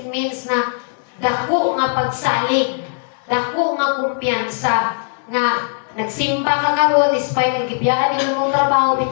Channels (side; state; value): right; silent; 62 dB below the other